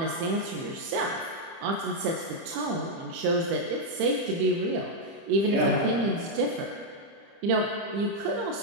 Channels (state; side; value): late; left; 30 ms